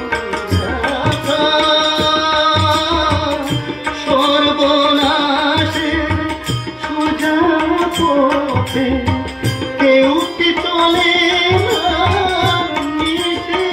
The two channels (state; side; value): identical; both; correlation 1.00